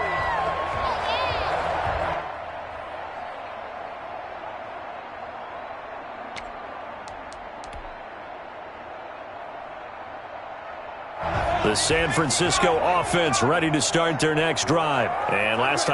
The San Francisco offense ready to start their next drive. And last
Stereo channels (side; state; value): both; identical; correlation 1.00